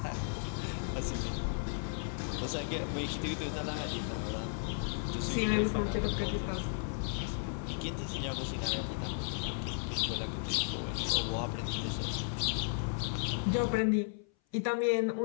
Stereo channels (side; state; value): right; silent; 55 dB below the other